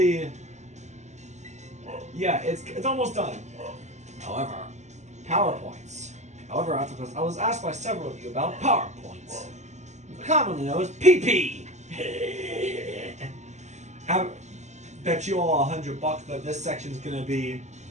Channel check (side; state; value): left; late; 0.33 ms